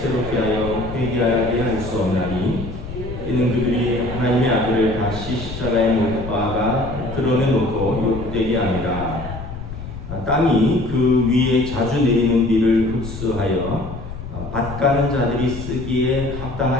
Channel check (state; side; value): noise; left; rumble, 9 dB below the sound